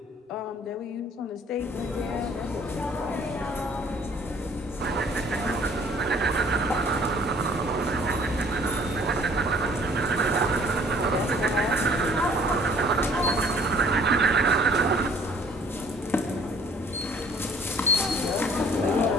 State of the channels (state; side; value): normal; both; correlation 0.55